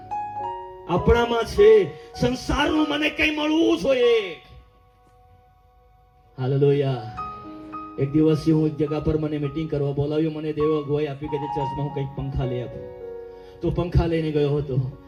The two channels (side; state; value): both; identical; correlation 1.00